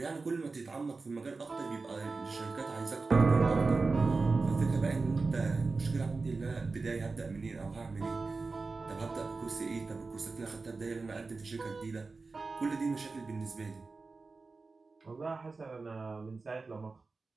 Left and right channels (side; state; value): left; quieter; 4.0 dB